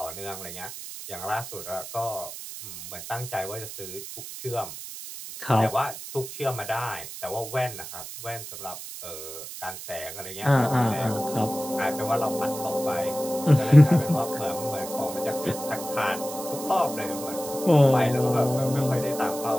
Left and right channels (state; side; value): noise; right; hiss, 11 dB below the sound